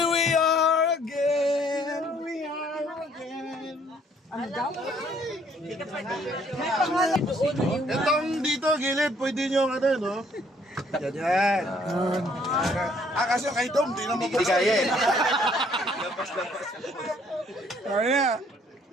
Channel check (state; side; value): normal; both; correlation 0.63